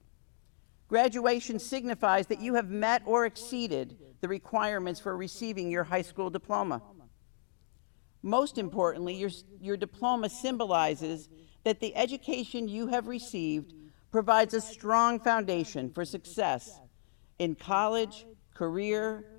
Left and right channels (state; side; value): silent; right; digital silence